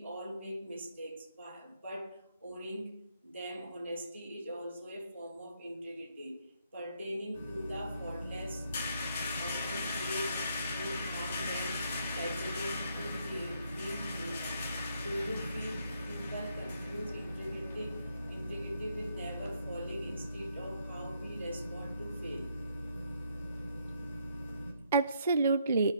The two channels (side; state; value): both; inverted; correlation -0.73